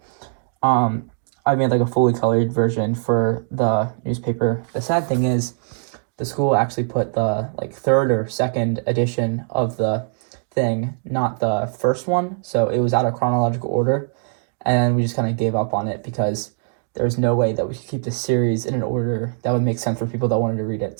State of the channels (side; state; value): left; silent; 65 dB below the other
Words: I made a fully colored version for the newspaper. The sad thing is, the school actually put the like third or second edition of the thing, not the first one. So it was out of chronological order, and we just kind of gave up on it because there's no way that we could keep the series in an order that would make sense for people that wanted to read it.